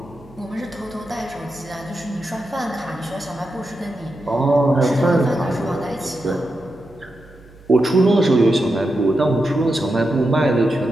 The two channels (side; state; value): right; noise; hum, 24 dB below the sound